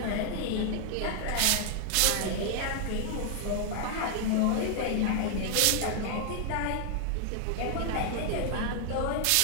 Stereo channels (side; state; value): both; different; correlation 0.00